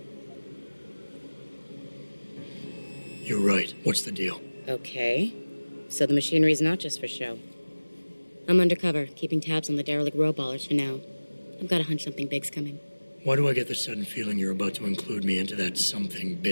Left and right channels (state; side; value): inverted; both; correlation -1.00